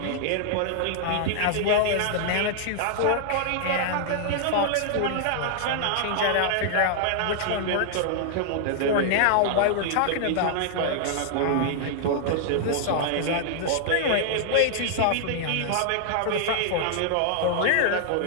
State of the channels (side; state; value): both; different; correlation -0.01